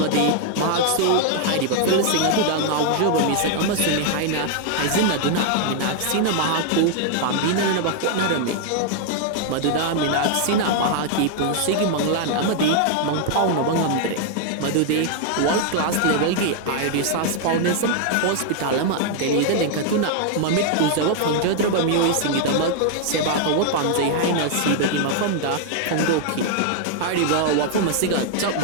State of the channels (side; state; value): both; different; correlation 0.00